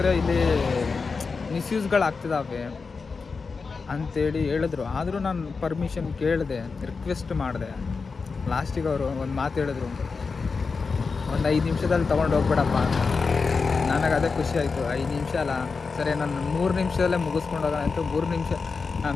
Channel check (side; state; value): right; quieter; 4.7 dB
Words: ಇಲ್ಲಿ ಮಿಸ್ಯೂಸ್ಗಳಾಗ್ತಿದ್ದಾವೆ ಅಂಥೇಳಿ ಹೇಳಿದ್ರು. ಆದರೂ ನಾನು ಪರ್ಮಿಷನ್ ಕೇಳಿದೆ, ರಿಕ್ವೆಸ್ಟ್ ಮಾಡಿದೆ. ಲಾಸ್ಟಿಗೆ ಅವರು ಒಂದು ಮಾತು ಹೇಳಿದ್ರು, ಒಂದು 5 ನಿಮಿಷದಲ್ಲಿ ತೊಗೊಂಡು ಹೋಗ್ಬೇಡಪ್ಪ ಅಂತ. ನನಗೆ ಅದೇ ಖುಷಿ ಆಯಿತು. 5 ನಿಮಿಷ ಅಲ್ಲ, ಸರಿ ನಾನು 3 ನಿಮಿಷದಲ್ಲೇ ಮುಗಿಸ್ಕೊಂಡು ಹೋಗೋಣ ಅಂತ 3 ನಿಮಿಷ,